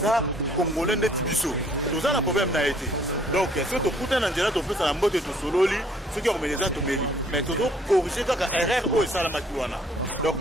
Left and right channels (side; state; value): both; normal; correlation 0.61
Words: cours de route, nous allons causer ou prendre un verre ensemble. C'est pourquoi nous faisons cette marche